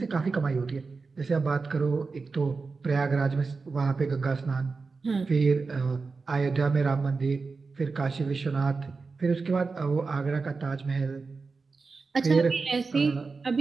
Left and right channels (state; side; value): quieter; left; 4.3 dB